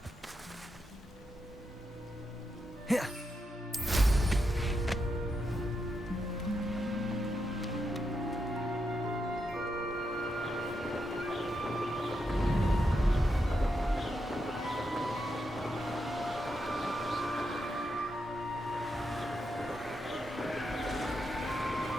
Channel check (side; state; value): both; normal; correlation 0.84